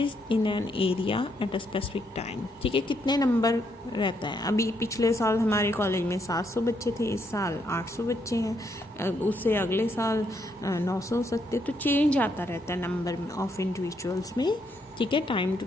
in an area at a specific time. ठीक है, कितने नंबर रहता है। अभी पिछले साल हमारे कॉलेज में 700 बच्चे थे, इस साल 800 बच्चे हैं, उससे अगले साल 900 हो सकते। तो चेंज आता रहता है नंबर ऑफ इंडिविजुअल्स में। ठीक है, टाइम टू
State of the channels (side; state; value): both; normal; correlation 0.75